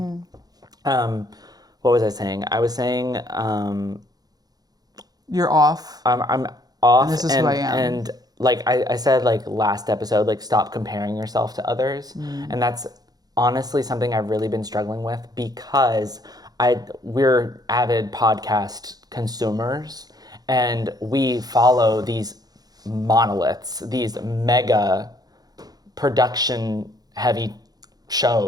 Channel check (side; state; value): left; late; 0.19 ms